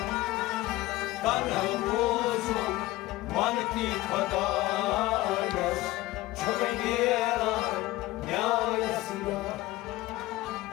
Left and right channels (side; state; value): right; quieter; 18.0 dB